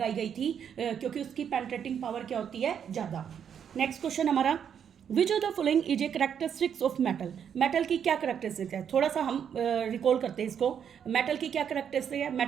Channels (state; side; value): quieter; left; 8.2 dB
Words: गई थी, क्योंकि उसकी पेनिट्रेटिंग पावर क्या होती है, ज़्यादा। नेक्स्ट क्वेश्चन हमारा, विच of the following is a characteristics of metal. Metal की क्या करेक्टरिस्टिक है, थोड़ा सा हम रिकॉल करते हैं इसको। मेटल की क्या करेक्टरिस्टिक है,